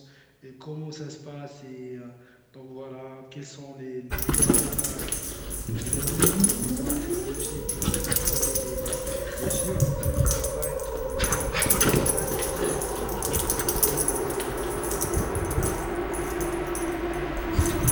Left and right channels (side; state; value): both; identical; correlation 1.00